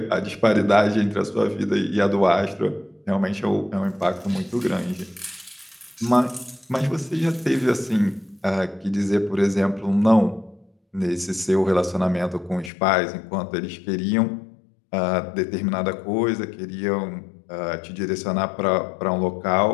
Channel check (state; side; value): drops out; right; at 12.7 s